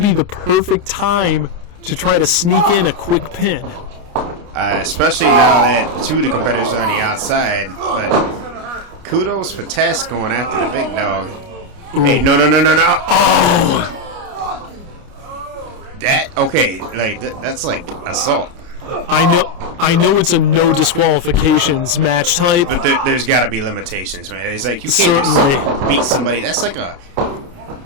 the perfect time to try to sneak in a quick pin. Especially now that 2 of the competitors are on the outside. But kudos for Tess going after the big dog. Ooh. Hey, no. Oh! That's like assault. I know it's a no disqualifications match type. But there's got to be limitations, man. It's like you can't Certainly just beat somebody. That's like a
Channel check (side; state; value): left; late; 29 ms